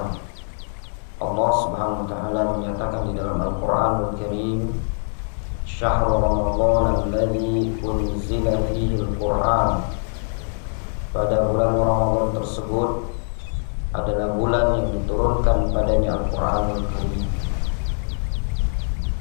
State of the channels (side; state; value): right; silent; 63 dB below the other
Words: Allah Subhanahu wa taala menyatakan di dalam Al-Qur'anul Karim, "Syahrul Ramadan alladzi unzila fihi al-Qur'an." Pada bulan Ramadan tersebut adalah bulan yang diturunkan padanya Al-Qur'anul Karim.